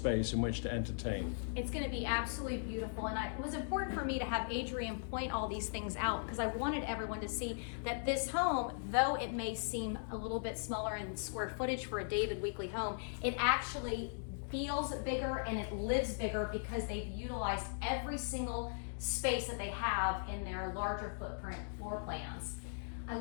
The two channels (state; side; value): silent; right; digital silence